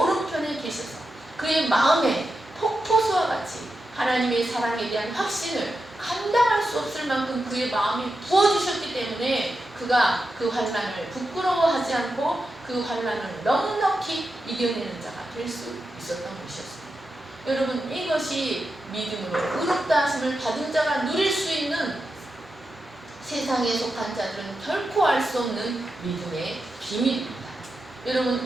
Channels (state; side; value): normal; both; correlation 0.89